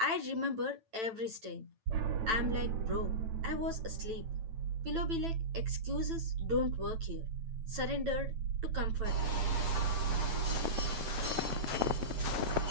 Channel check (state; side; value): late; left; 8.9 ms